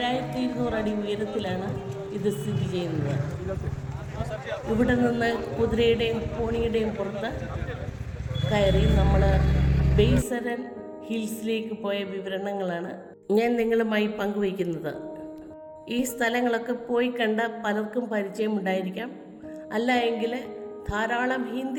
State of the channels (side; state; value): both; identical; correlation 1.00